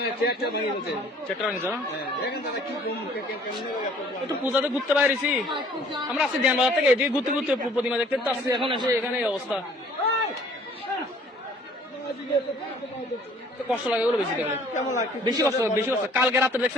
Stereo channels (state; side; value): normal; both; correlation 0.55